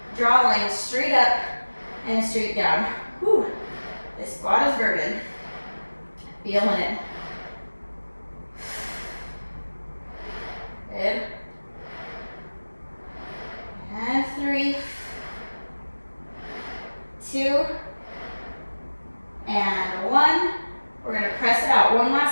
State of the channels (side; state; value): both; inverted; correlation -1.00